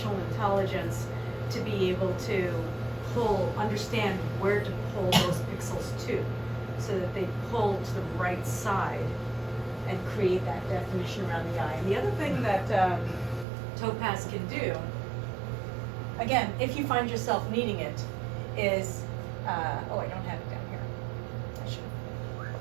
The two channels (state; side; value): drops out; left; at 13.5 s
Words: intelligence to be able to understand where to pull those pixels to, so that they pull to the right side and create that definition around the eye. And the other thing that Topaz can do, again, if you find yourself needing it, is, oh, I don't have it down here. I should.